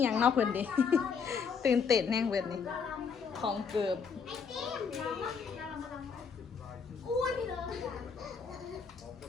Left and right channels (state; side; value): quieter; right; 6.0 dB